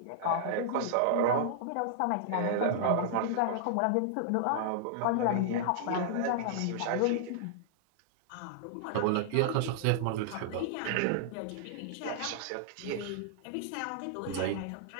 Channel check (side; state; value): both; different; correlation -0.01